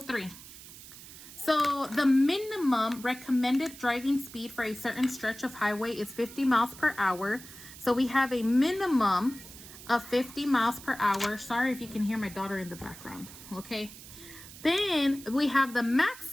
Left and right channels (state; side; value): noise; right; hiss, 16 dB below the sound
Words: So the minimum recommended driving speed for a certain stretch of highway is 50 miles per hour. So we have a minimum of 50 miles per hour. Sorry if you can hear my daughter in the background, okay? Then we have the